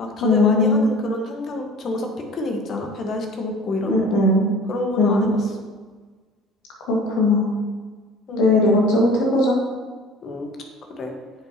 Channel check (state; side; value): normal; both; correlation 0.43